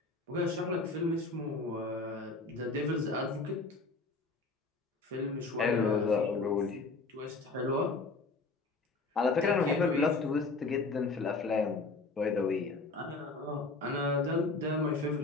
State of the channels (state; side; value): quieter; right; 3.7 dB